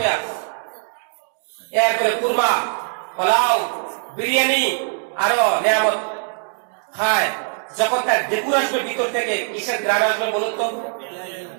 এরপরে কুরমা, পোলাও, বিরিয়ানি, আরো নিয়ামত খায়, যখন তার ঢেকুর আসবে ভিতর থেকে, কিসের গ্রান আসবে বলুন তো?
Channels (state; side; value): silent; left; 63 dB below the other